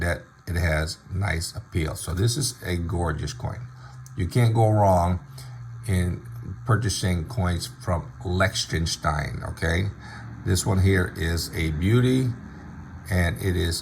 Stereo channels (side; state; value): both; identical; correlation 1.00